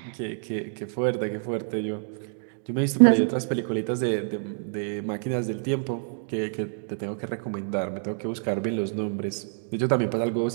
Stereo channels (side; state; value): left; silent; digital silence